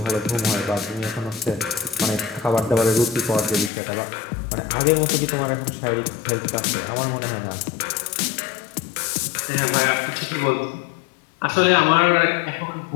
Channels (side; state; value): right; drops out; at 3.7 s